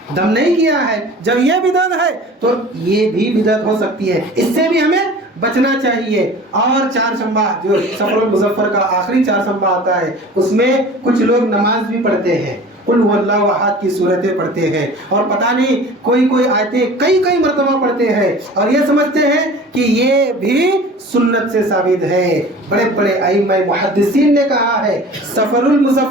دم نہیں کیا ہے۔ جب یہ بدعت ہے تو یہ بھی بدعت ہو سکتی ہے، اس سے بھی ہمیں بچنا چاہیے۔ اور چہارشنبہ جو سفر المظفر کا آخری چہارشنبہ آتا ہے، اس میں کچھ لوگ نماز بھی پڑھتے ہیں، قل هو اللہ احد کی صورتیں پڑھتے ہیں، اور پتہ نہیں کوئی آیتیں کئی مرتبہ پڑھتے ہیں، اور یہ سمجھتے ہیں کہ یہ بھی سنت سے ثابت ہے۔ بڑے ائمہ محدثین نے کہا ہے سفر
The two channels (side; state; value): both; normal; correlation 0.42